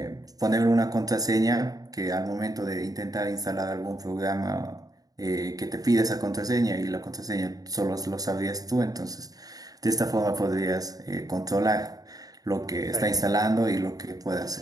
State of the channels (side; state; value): left; late; 0.18 ms